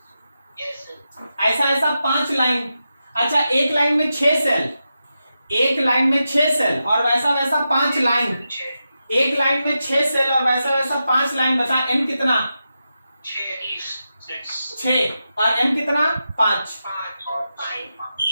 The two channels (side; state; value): both; inverted; correlation -0.89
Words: Yes, sir. ऐसा ऐसा 5 line, अच्छा एक line में 6 cell, एक लाइन में 6 सेल और वैसा वैसा 5 लाइन, एक लाइन में 6 सेल और वैसा वैसा 5 लाइन। बता N कितना? 6 और M कितना? 5।